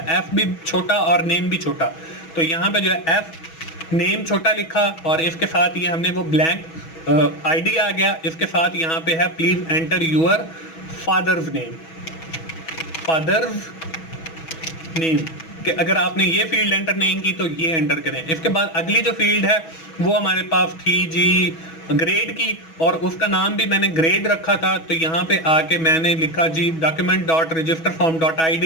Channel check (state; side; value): late; right; 6.2 ms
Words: एफ भी छोटा और नेम भी छोटा। तो यहाँ पे जो है एफ नेम छोटा लिखा, और इसके साथ ये हमने वो ब्लैंक आईडी आ गया। इसके साथ यहाँ पे है please enter your father's name, father's name, कि अगर आपने ये फील्ड एंटर नहीं की तो ये एंटर करें। इसके बाद अगली जो फील्ड है वो हमारे पास थी जी ग्रेड की, और उसका नाम भी मैंने ग्रेड रखा था। तो यहाँ पे आके मैंने लिखा जी document dot register form dot I